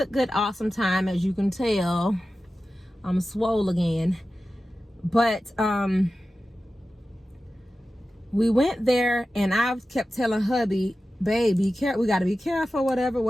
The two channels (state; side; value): normal; both; correlation 0.94